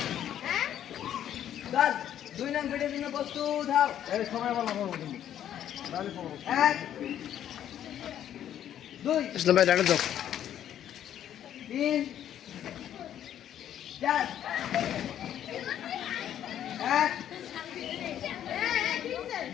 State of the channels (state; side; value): quieter; right; 10.6 dB